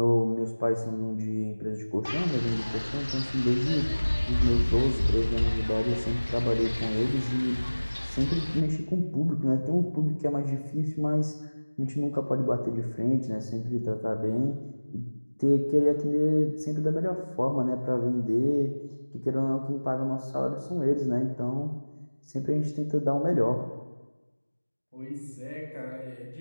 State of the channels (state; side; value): inverted; both; correlation -1.00